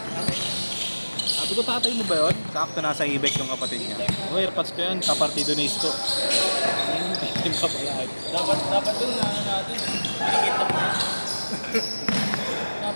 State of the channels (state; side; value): inverted; both; correlation -1.00